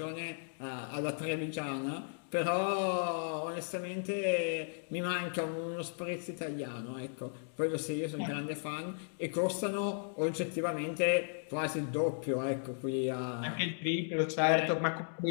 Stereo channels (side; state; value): right; silent; digital silence